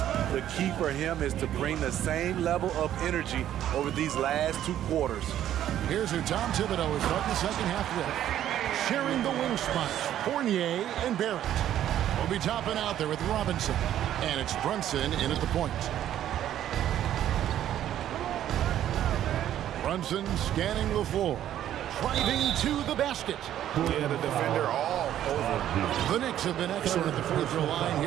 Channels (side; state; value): left; quieter; 11.5 dB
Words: The key for him is to bring the same level of energy over these last 2 quarters. Here's who Tom Thibodeau is starting the second half with. Sharing the wing spots, Fournier and Barrett. Will be topping out there with Robinson. And it's Brunson in at the point. Brunson scanning the floor. Driving to the basket. Yeah, the defender all over. The Knicks have been excellent at the free throw line